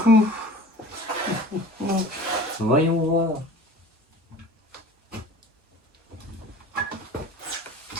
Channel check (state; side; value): normal; both; correlation 0.41